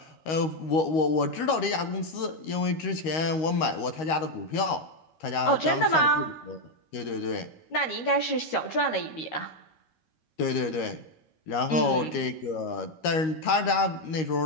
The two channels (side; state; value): right; late; 13 ms